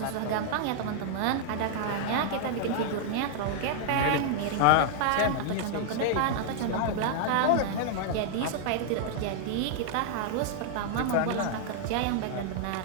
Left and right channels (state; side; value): different; both; correlation -0.01